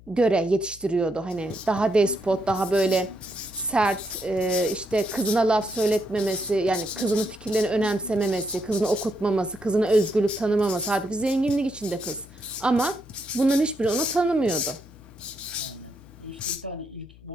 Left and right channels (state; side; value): noise; left; hum, 22 dB below the sound